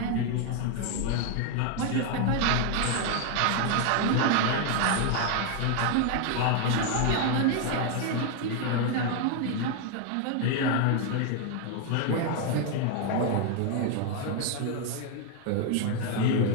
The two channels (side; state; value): both; different; correlation 0.00